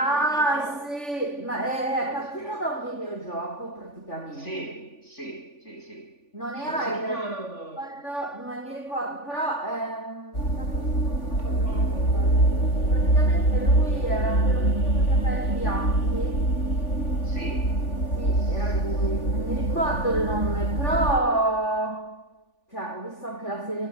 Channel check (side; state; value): right; late; 3.5 ms